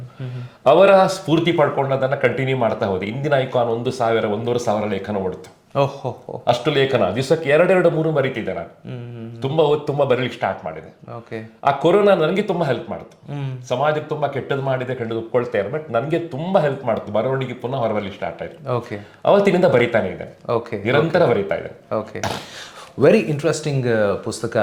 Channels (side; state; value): both; identical; correlation 1.00